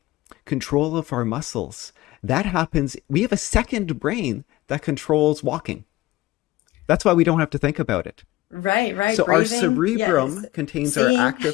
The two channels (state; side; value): quieter; right; 17.7 dB